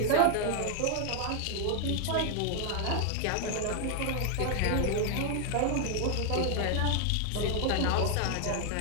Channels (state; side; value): different; both; correlation 0.00